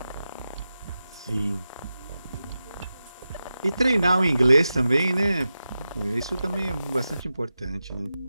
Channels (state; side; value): inverted; both; correlation -0.92